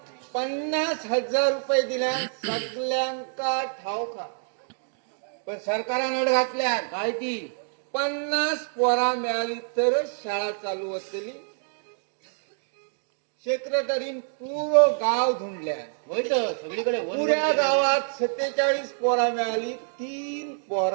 50,000 रुपये दिल्या सगळ्यांका ठावका. पण सरकारान अड घातल्या काय ती 50 पोरा मिळाली तर शाळा चालू होतली. सेक्रेटरीन पूर्ण गाव धुंडल्या. होय तर सगळीकडे पुऱ्या गावात 47 पोरा मिळाली. 3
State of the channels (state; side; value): silent; left; digital silence